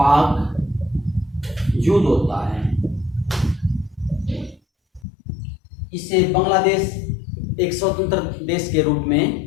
युद्ध होता है। इससे बांग्लादेश एक स्वतंत्र देश के रूप में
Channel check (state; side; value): drops out; right; at 5.0 s